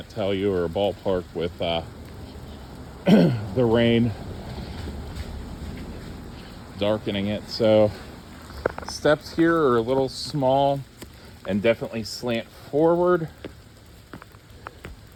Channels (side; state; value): both; identical; correlation 1.00